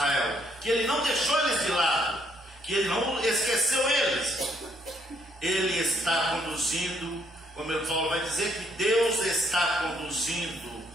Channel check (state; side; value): normal; both; correlation 0.70